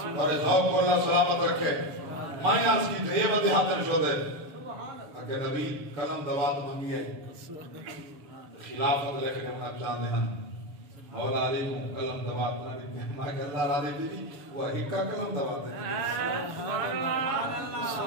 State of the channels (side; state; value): left; late; 6.9 ms